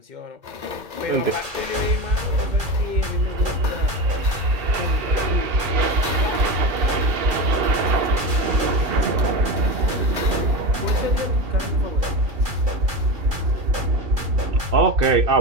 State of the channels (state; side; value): late; left; 2.0 ms